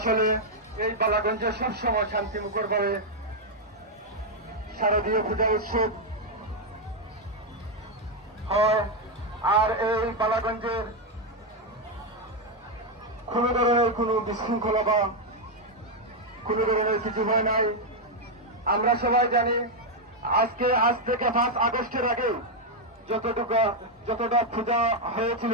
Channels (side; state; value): both; normal; correlation 0.02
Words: এই বালাগঞ্জে সবসময় শান্তিমুখর ভাবে শারদীয় পূজা উৎসব হয়, আর এই বালাগঞ্জের কোন ধরনের কোন বিশৃঙ্খলা বা কোন ধরনের কিছু হয় নাই। আমরা সবাই জানি আজ থেকে 5 আগস্টের আগে যতটা পূজা হয়েছিল,